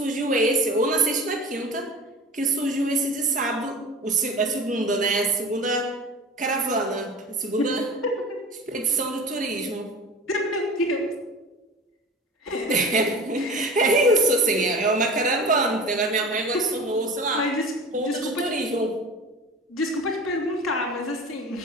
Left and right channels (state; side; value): normal; both; correlation 0.37